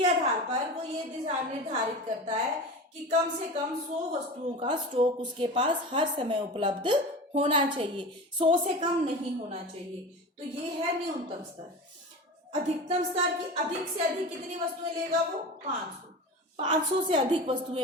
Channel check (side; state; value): both; normal; correlation 0.31